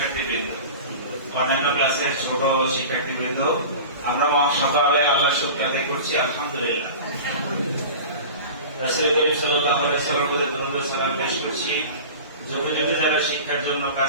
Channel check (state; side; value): inverted; both; correlation -0.35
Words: অন্যান্য ক্লাসের ছোট শিক্ষার্থীবৃন্দ, আমরা সকালে আল্লাহর শুকর আদায় করছি আলহামদুলিল্লাহ। রাসূল করিম সাল্লাল্লাহু আলাইহি ওয়াসাল্লামের সালাম পেশ করছি। যুগে যুগে যারা শিক্ষার জন্য